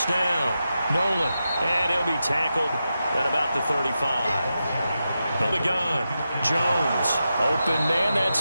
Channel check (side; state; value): both; inverted; correlation -0.89